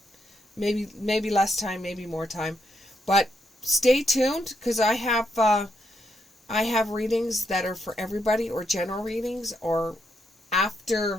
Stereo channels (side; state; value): both; normal; correlation 0.79